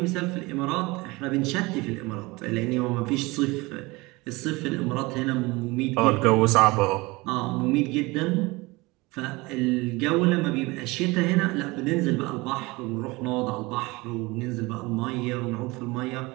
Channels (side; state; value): left; quieter; 23.1 dB